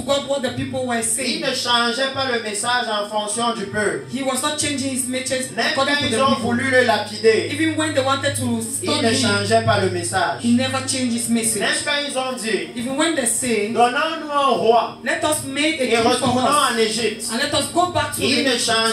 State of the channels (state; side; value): identical; both; correlation 1.00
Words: what the people were Il saying. ne changeait pas le message en fonction du peuple. He was not changing his message Même according quand to the ils ont people. voulu le lapider, Even when they wanted to il stone ne him, changeait pas le message. he never changed his Même message. quand ils ont dit, Even when they say, donnons-nous un roi let us make a et king for retournons us en Égypte, and let us go back to il ne the